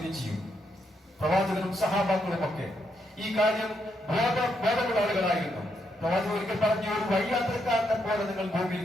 ചെയ്യും. പ്രവാചകനും സഹാബാക്കളും ഒക്കെ ഈ കാര്യം ബോധമുള്ള ആളുകളായിരുന്നു. പ്രവാചകൻ ഒരിക്കൽ പറഞ്ഞു, ഒരു വഴിയാത്രക്കാരനെ പോലെ നിങ്ങൾ ഭൂമിയിൽ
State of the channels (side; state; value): both; normal; correlation 0.79